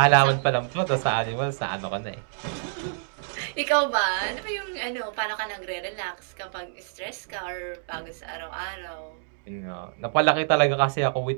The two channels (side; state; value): left; silent; 60 dB below the other